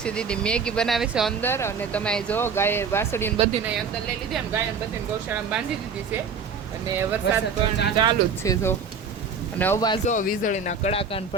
દીદી મેગી બનાવે છે અંદર. અને તમે જો ગાય વાસળીને બધીને અંદર લઈ લીધી, એમ ગાયને બધીને ગૌશાળામાં બાંધી દીધી છે અને વરસાદ ચાલુ જ છે જો. અને અવાજ જો વીજળીના કડાકા ને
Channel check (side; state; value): left; quieter; 5.6 dB